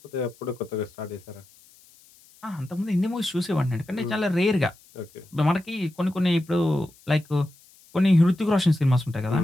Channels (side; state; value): left; noise; hiss, 27 dB below the sound